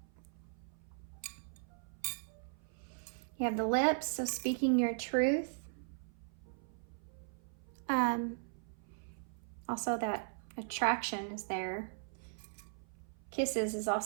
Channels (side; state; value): left; silent; 52 dB below the other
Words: You have the lips, so speaking your truth. Also that attraction is there. Kisses is